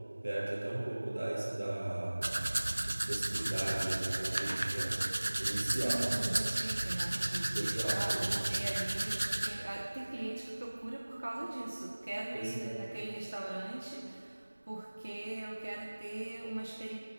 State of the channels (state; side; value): inverted; both; correlation -1.00